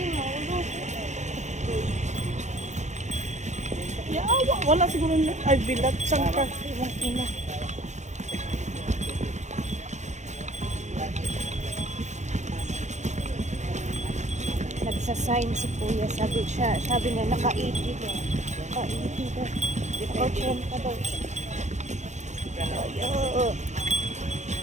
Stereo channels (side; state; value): left; late; 0.34 ms